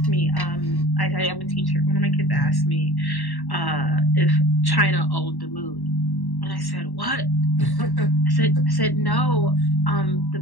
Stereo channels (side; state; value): right; late; 1.1 ms